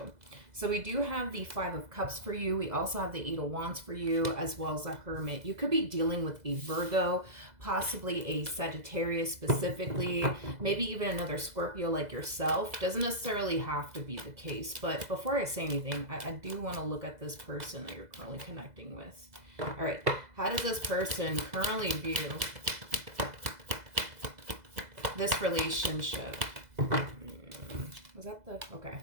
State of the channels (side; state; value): left; late; 2.0 ms